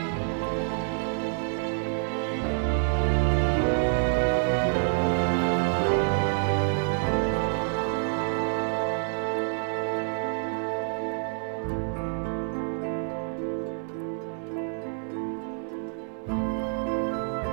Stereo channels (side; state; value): left; silent; digital silence